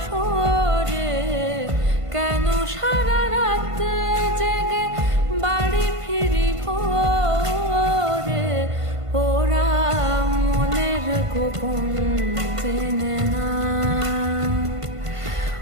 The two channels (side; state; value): left; late; 1.5 ms